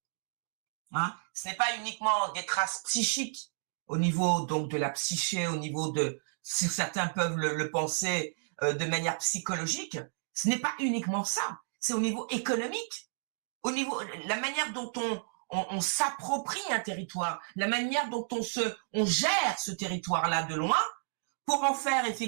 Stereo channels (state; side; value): silent; left; digital silence